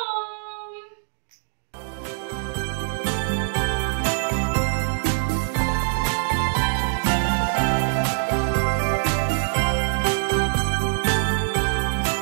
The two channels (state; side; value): silent; left; 63 dB below the other